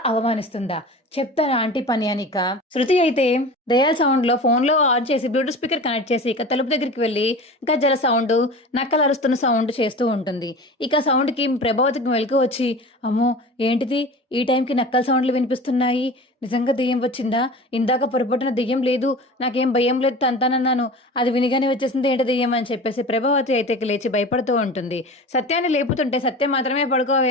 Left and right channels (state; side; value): normal; both; correlation 0.35